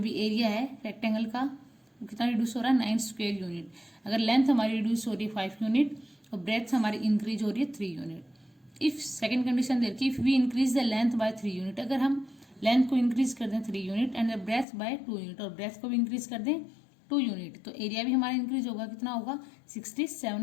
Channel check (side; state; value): right; drops out; at 14.7 s